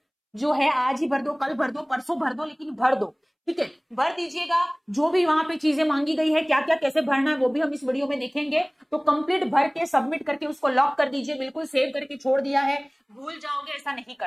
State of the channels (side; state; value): both; identical; correlation 1.00